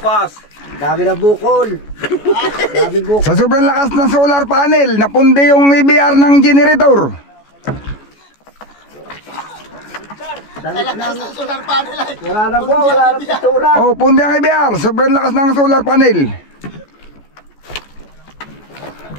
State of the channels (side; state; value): right; late; 14 ms